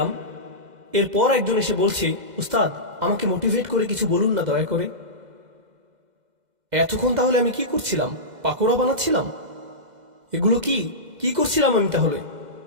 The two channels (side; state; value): left; late; 2.0 ms